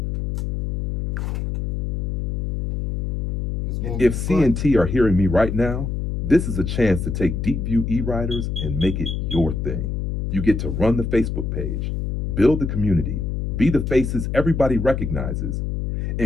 If CNT are hearing me right now, this is a chance to take DeepView eWriters and make it your thing. You get to run the Facebook page, build the community, be the faces everybody recognizes,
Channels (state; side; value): noise; left; hum, 2 dB below the sound